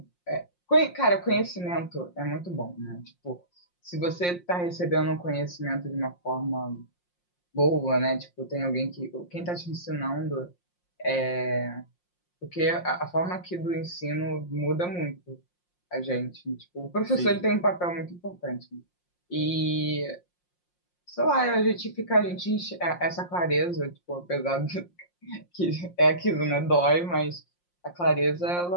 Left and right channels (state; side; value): late; right; 5.6 ms